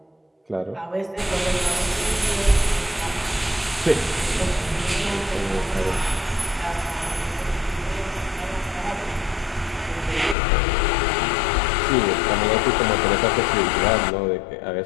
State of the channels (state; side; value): drops out; right; at 10.4 s